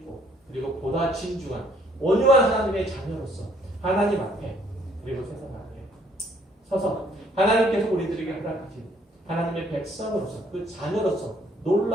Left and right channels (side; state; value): both; normal; correlation 0.64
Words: 그리고 보다 진중한 온유한 하나님의 자녀로서 하나님 앞에 그리고 세상 앞에 서서 하나님께서 우리들에게 허락하신 하나님의 백성으로서 그 자녀로서